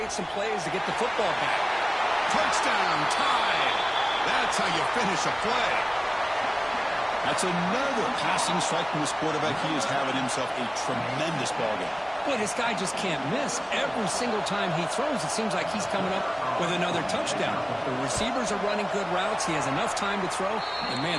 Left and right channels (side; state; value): both; identical; correlation 1.00